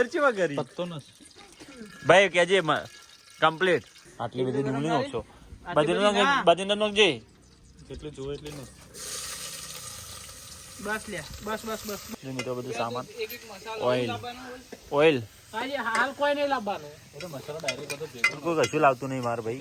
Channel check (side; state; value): both; identical; correlation 1.00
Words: ચેવા કરી ભાઈ કેજે કમ્પ્લીટ આટલી બધી ડુંગળી નાખશો બધી નાખજે જેટલું જોવે એટલું ને બસ લે બસ મિત્રો બધું સામાન એક મસાલો ઓઇલ લાવવાનો હોય. ઓઇલ આજે હાલ કોઈ નહીં લાવવાનું કોઈ કશું લાવતું નહીં માર ભાઈ